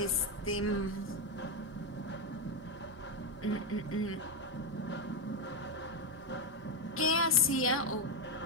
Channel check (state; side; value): normal; both; correlation 0.06